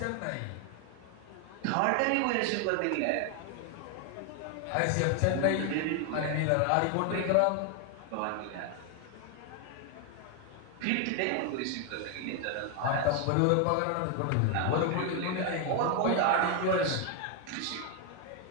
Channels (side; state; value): both; different; correlation 0.01